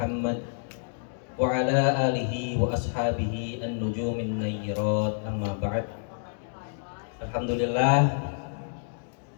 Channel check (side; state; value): right; silent; digital silence